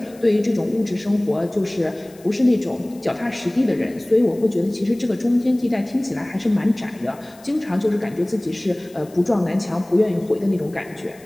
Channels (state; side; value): noise; left; hiss, 26 dB below the sound